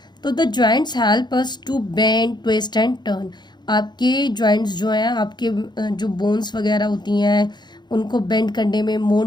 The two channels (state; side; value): late; right; 0.21 ms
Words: तो the joints help us to bend, twist and turn. आपके joints जो हैं, आपके जो बोन्स वगैरह होती हैं, उनको बेंड करने में,